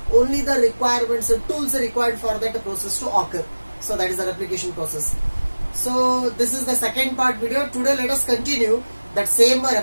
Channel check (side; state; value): both; inverted; correlation -1.00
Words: only the requirements, the tools required for that process to occur. So that is the replication process. So this is the second part video. Today let us continue that same